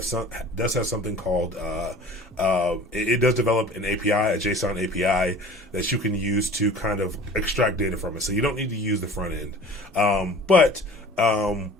something called it does develop an API, a JSON API that you can use to kind of extract data from it. So you don't need to use the front end, but from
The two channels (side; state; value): both; normal; correlation 0.44